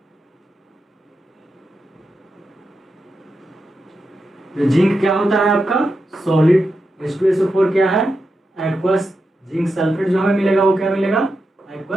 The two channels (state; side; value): normal; both; correlation 0.87